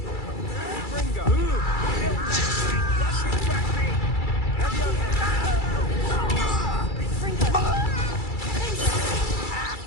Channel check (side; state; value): right; late; 2.3 ms